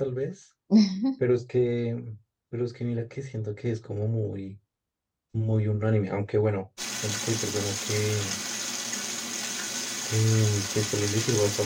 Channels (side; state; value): both; identical; correlation 1.00